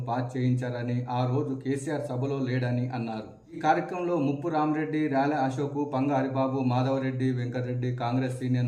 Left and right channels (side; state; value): both; identical; correlation 1.00